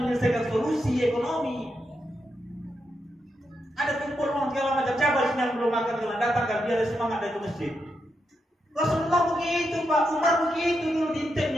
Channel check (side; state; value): both; normal; correlation 0.84